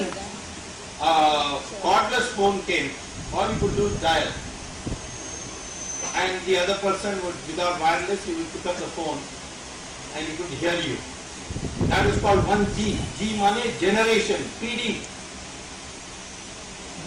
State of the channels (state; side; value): identical; both; correlation 1.00